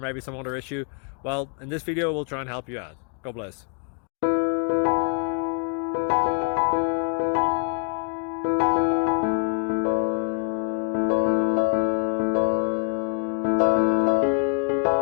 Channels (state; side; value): quieter; right; 39.6 dB